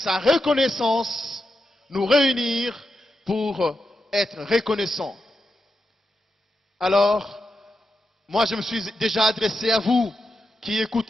reconnaissance, nous réunir pour être reconnaissant. Alors, moi je me suis déjà adressé à vous qui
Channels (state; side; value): normal; both; correlation 0.87